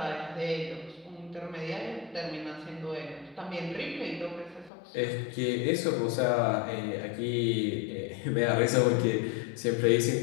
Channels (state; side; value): drops out; right; at 4.7 s